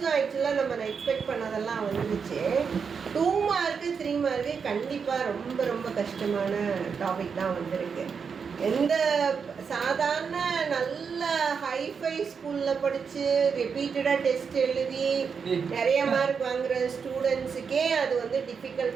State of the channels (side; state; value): left; quieter; 6.1 dB